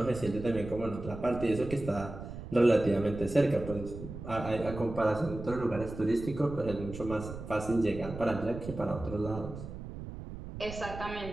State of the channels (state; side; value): noise; right; rumble, 10 dB below the sound